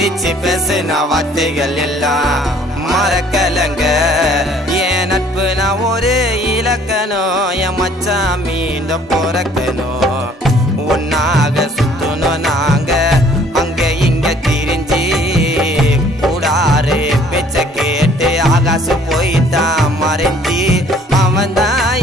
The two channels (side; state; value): both; normal; correlation 0.58